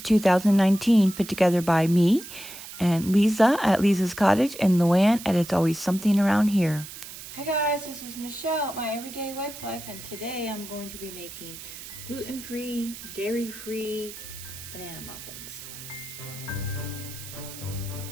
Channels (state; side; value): noise; right; hiss, 13 dB below the sound